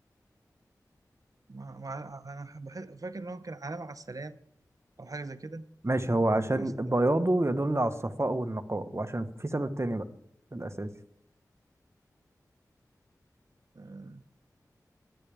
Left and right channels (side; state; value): both; normal; correlation 0.91